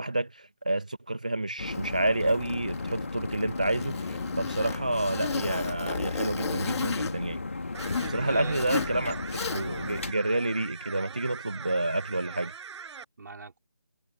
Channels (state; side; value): inverted; both; correlation -0.81